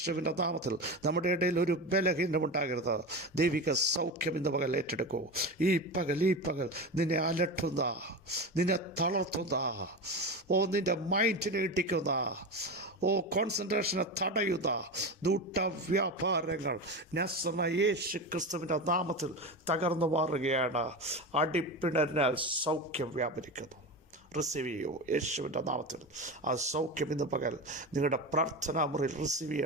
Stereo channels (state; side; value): normal; both; correlation 0.23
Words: നാമത്തിൽ നമ്മുടെ ഇടയിൽ ഒരു ബലഹീനമുണ്ടാകരുത്. ദൈവിക സൗഖ്യം ഇന്ന് പകൽ ഏറ്റെടുക്കൂ. ഈ പകൽ നിന്നെ അലട്ടുന്ന, നിന്നെ തളർത്തുന്ന, നിന്റെ മൈൻഡിനെ ഇടിക്കുന്ന, കോൺസെൻട്രേഷനെ തടയുന്ന ദൂട്ടവ്യാപാരങ്ങൾ നസറേനായ യേശു ക്രിസ്തുവിൻ്റെ നാമത്തിൽ തകർന്നു മാറുകയാണ്. അടിപ്പിണരിനാൽ സൗഖ്യം വ്യാപരിക്കുന്നു. റിസീവ് ചെയ്യൂ യേശുവിൻ്റെ നാമത്തിൽ. ആ സൗഖ്യം ഇന്ന് പകൽ നിങ്ങളുടെ പ്രാർത്ഥനാ മുറിയിൽ റിസീവ്